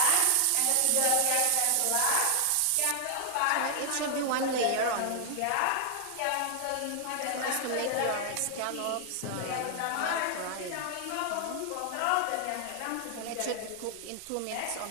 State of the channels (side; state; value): both; different; correlation 0.00